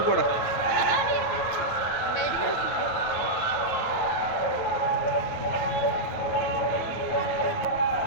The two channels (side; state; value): right; late; 9.3 ms